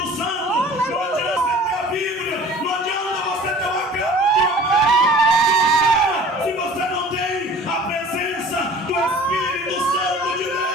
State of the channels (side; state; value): both; normal; correlation 0.46